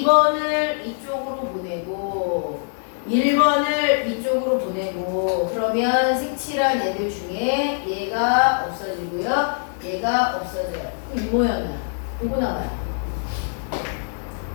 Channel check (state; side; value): silent; right; digital silence